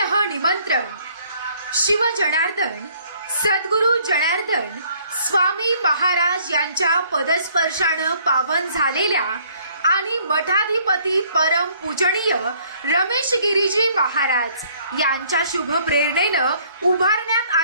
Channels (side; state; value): both; inverted; correlation -0.61